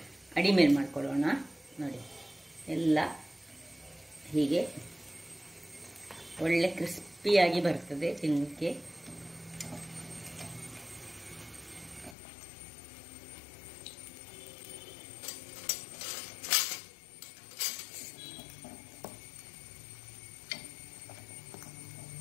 ಅಡಿಮೇಲ್ ಮಾಡ್ಕೊಳ್ಳೋಣ. ನೋಡಿ, ಎಲ್ಲ ಹೀಗೆ ಒಳ್ಳೆ ಕ್ರಿಸ್ಪಿಯಾಗಿ ಬರ್ತದೆ ತಿನ್ನಲಿಕ್ಕೆ.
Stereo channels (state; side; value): drops out; right; at 12.2 s